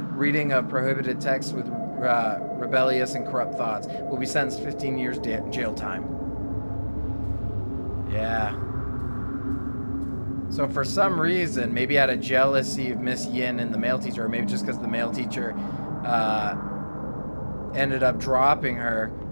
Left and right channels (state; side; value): inverted; both; correlation -1.00